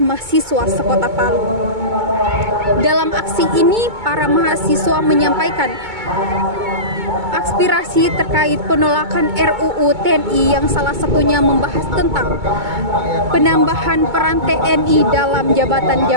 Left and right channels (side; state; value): left; late; 2.2 ms